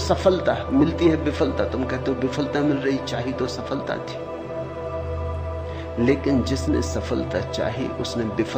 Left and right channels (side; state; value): both; identical; correlation 1.00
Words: मिलती है विफलता, तुम कहते हो विफलता मिल रही, चाहिए तो सफलता थी। लेकिन जिसने सफलता चाही उसने